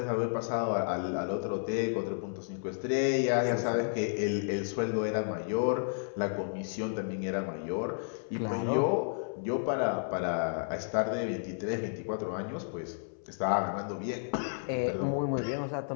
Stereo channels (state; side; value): silent; right; 56 dB below the other